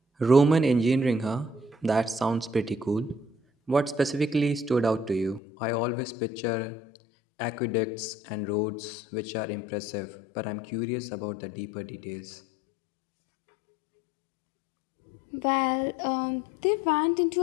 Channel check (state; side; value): drops out; right; at 5.4 s